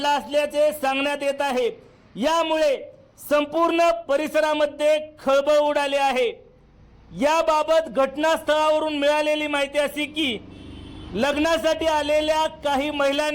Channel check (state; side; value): identical; both; correlation 1.00